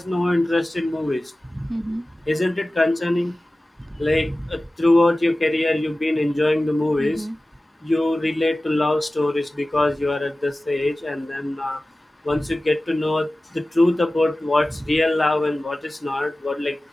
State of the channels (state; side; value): normal; both; correlation 0.97